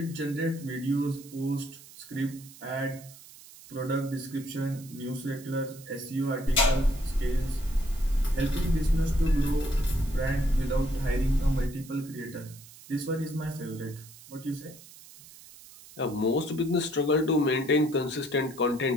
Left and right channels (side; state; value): right; noise; hiss, 20 dB below the sound